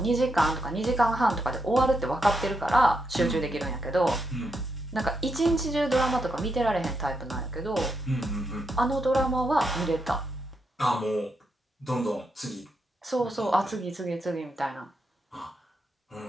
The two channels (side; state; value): both; normal; correlation 0.82